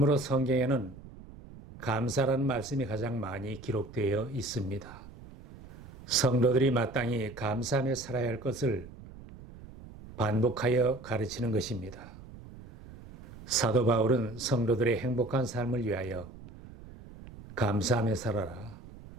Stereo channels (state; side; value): noise; right; rumble, 17 dB below the sound